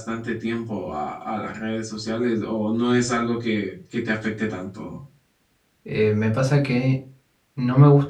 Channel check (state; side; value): identical; both; correlation 1.00